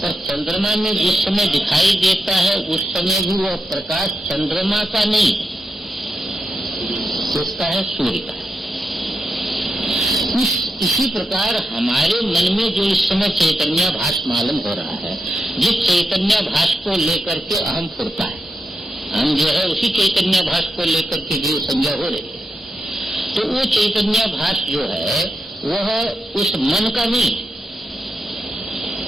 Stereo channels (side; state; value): both; normal; correlation 0.87